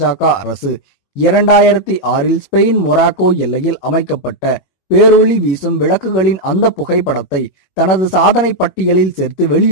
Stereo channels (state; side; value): late; right; 21 ms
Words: அரசு 2006இல் ஸ்பெயின் மொராக்கோ எல்லையில் அமைக்கப்பட்ட பேரொளி வீசும் விளக்குகளின் அந்த புகைப்படத்தை தனது சாதனை பட்டியலில் சேர்த்து